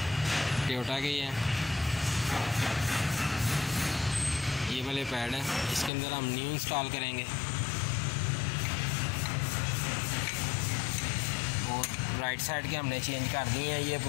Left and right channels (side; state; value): right; drops out; at 5.9 s